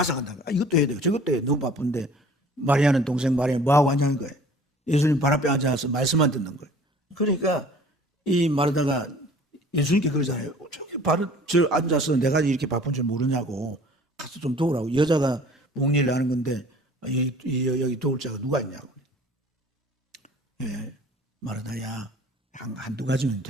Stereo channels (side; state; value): both; normal; correlation 0.49